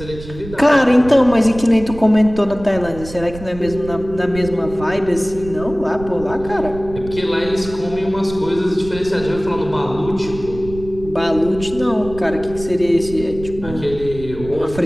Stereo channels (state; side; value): noise; right; rumble, 13 dB below the sound